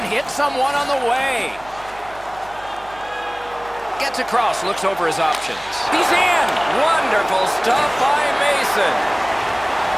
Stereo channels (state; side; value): noise; right; hum, 22 dB below the sound